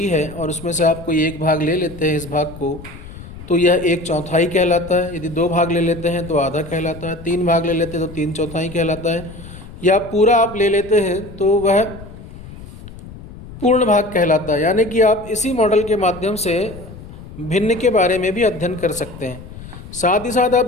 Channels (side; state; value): left; noise; rumble, 15 dB below the sound